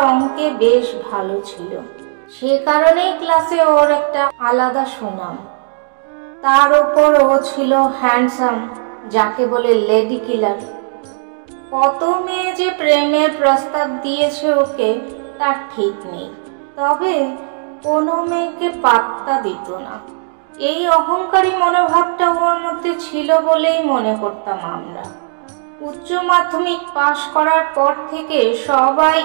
অঙ্কে বেশ ভালো ছিল। সে কারণেই ক্লাসে ওর একটা আলাদা সুনাম। তার উপর ও ছিল হ্যান্ডসাম, যাকে বলে লেডি কিলার। কত মেয়ে যে প্রেমের প্রস্তাব দিয়েছে ওকে তার ঠিক নেই, তবে কোনো মেয়েকে পাত্তা দিত না। এই অহংকারী মনোভাবটা ওর মধ্যে ছিল বলেই মনে করতাম আমরা। উচ্চ মাধ্যমিক পাশ করার পর থেকে সবাই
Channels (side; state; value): left; silent; digital silence